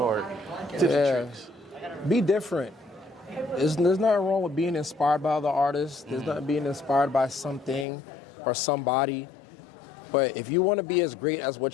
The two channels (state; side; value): drops out; right; at 7.9 s